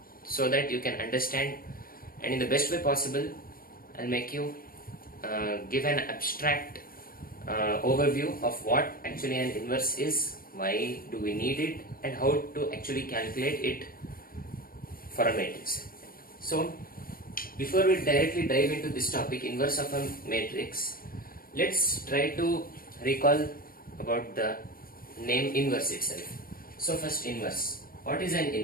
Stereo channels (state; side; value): late; right; 0.42 ms